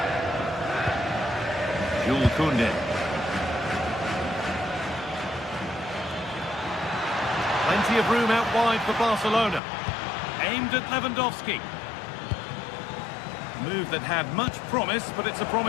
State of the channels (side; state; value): right; drops out; at 9.6 s